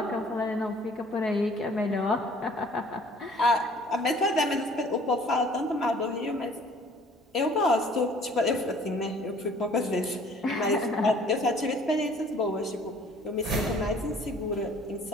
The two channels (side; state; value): both; normal; correlation 0.54